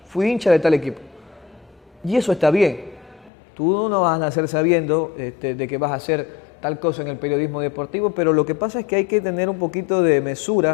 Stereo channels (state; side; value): drops out; right; at 3.3 s